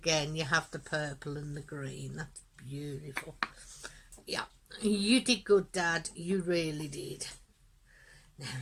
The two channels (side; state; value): both; identical; correlation 1.00